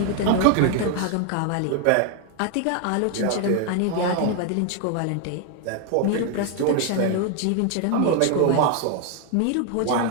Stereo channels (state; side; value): different; both; correlation 0.01